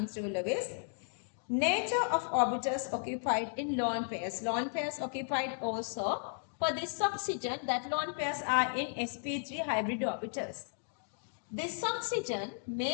through Lewis. Nature of orbitals occupied in lone pairs. Lone pairs occupied also. For this oxygen, that lone pairs are in sp3 hybrid orbitals. This oxygen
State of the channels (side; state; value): right; silent; digital silence